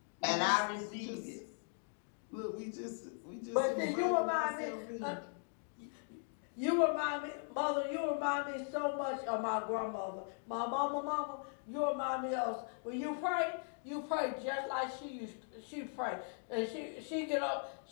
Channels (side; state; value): right; silent; 52 dB below the other